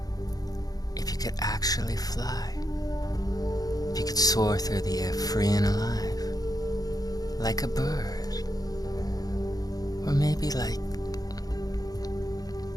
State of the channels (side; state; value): right; late; 0.18 ms